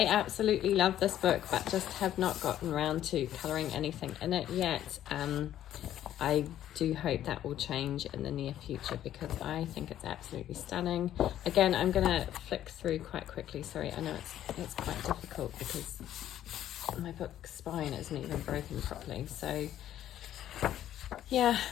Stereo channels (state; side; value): quieter; right; 11.7 dB